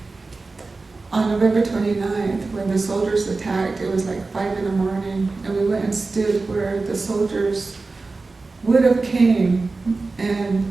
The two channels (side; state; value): left; quieter; 3.7 dB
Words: on November 29th, when the soldiers attacked, it was like 5 in the morning, and we went and stood where the soldiers would have came, and